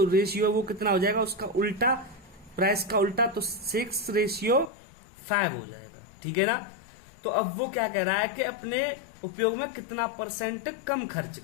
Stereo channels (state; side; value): drops out; right; at 4.7 s